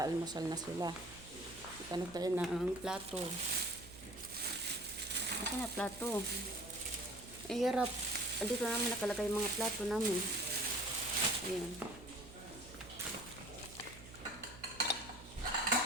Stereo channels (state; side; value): noise; right; hum, 17 dB below the sound